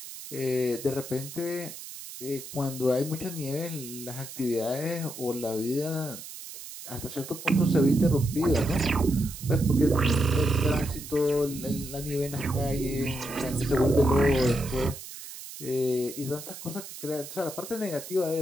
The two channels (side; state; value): right; noise; hiss, 12 dB below the sound